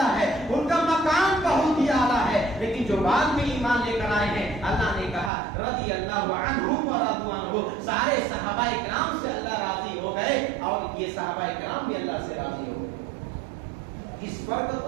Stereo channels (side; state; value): left; drops out; at 5.3 s